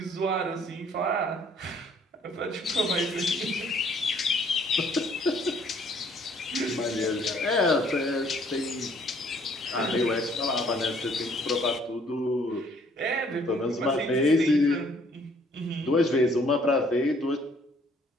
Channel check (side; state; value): both; normal; correlation 0.62